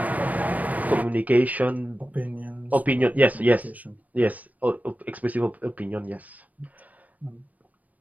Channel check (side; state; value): left; late; 0.074 ms